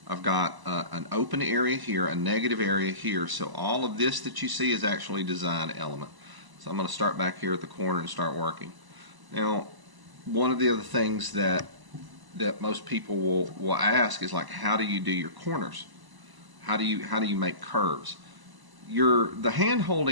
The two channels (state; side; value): late; left; 1.0 ms